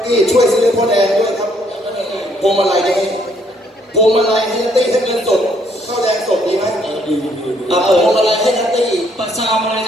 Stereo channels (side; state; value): both; normal; correlation 0.68